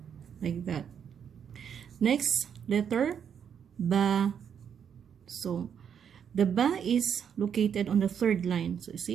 Like that. Next, letter Ba. So the Ba is located on the third line. So you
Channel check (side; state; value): left; quieter; 7.9 dB